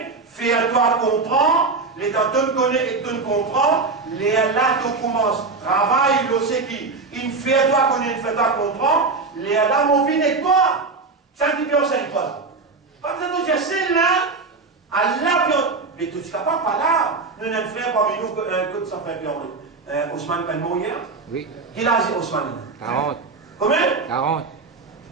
fais-toi comprendre, les temps tu connais et tu comprends, les là tu commences, travail, le c'est qui, il fait-toi connaître, il fait-toi comprendre, les là mon vie n'est pas, ça qui peut enseigner toi. Pas besoin de dire, c'est là, Allah, mais tu ne seras pas là, nous n'avons fait parmi nous que ça fait peur. Ousmane peut mourir? Oui. Quel âge est Ousmane? 40. Combien? 40.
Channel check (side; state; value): left; quieter; 4.1 dB